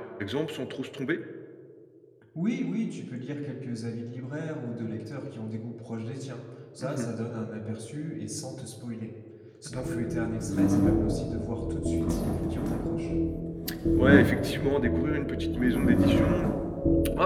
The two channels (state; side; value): identical; both; correlation 1.00